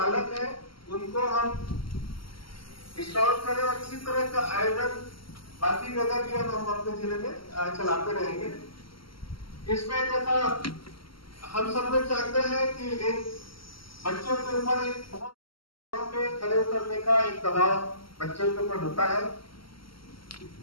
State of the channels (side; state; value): right; late; 0.74 ms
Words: हैं, उनको हम स्ट्रांग करें, और इसी तरह का आयोजन बाकी जगह भी हम अपने जिले में चलाते रहेंगे। इसमें जैसा हम सब लोग चाहते हैं कि एक बच्चों के ऊपर एक बहुत पे खड़े उतरने का एक दबाव बच्चों के ऊपर होता है,